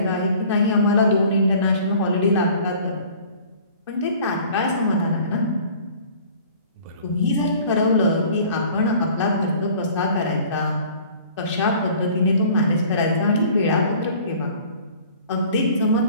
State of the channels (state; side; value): inverted; both; correlation -0.49